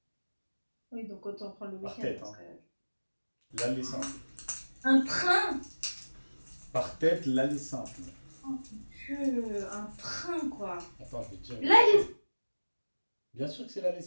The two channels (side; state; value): both; inverted; correlation -1.00